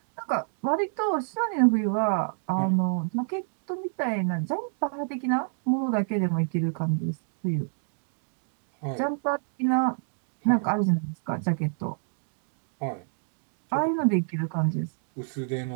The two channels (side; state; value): left; silent; digital silence